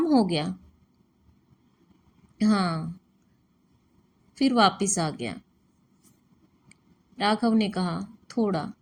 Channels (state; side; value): identical; both; correlation 1.00